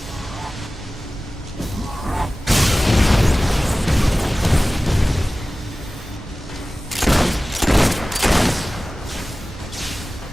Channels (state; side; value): normal; both; correlation 0.97